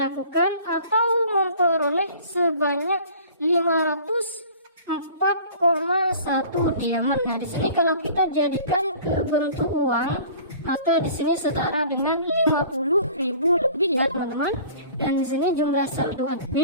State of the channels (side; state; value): both; inverted; correlation -0.46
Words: atau memperoleh sebanyak 504,1 diamond. Nah, di sini kalau kita jadikan ke bentuk uang, maka di sini setara dengan 50.000 lebih ya teman-teman. Dan di sini jumlah saldo